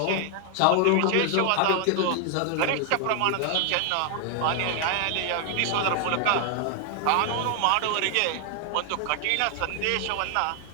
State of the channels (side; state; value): both; different; correlation 0.00